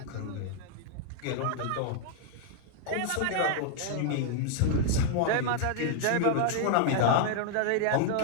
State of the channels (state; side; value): different; both; correlation -0.01